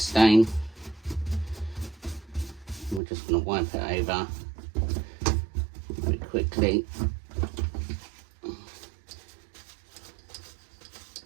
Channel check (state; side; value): drops out; left; at 3.0 s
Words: We're just going to wipe it over very quickly.